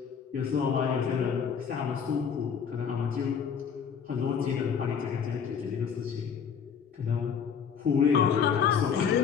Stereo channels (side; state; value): right; quieter; 7.0 dB